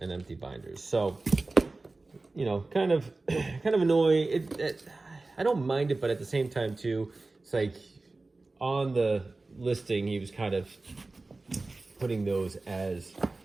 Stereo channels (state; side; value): quieter; left; 3.3 dB